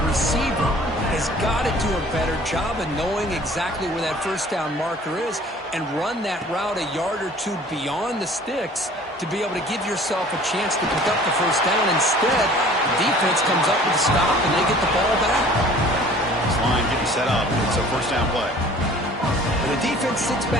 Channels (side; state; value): both; normal; correlation 0.50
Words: receiver has got to do a better job of knowing exactly where that first down marker is and run that route a yard or two beyond the sticks to be able to give yourself a chance to pick up the first down. Instead, the defense comes up with a stop and they get the ball back. This line getting set up. It's a first down play. The defense sits